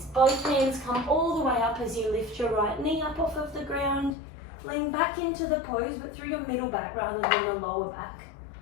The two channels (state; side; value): drops out; right; at 4.2 s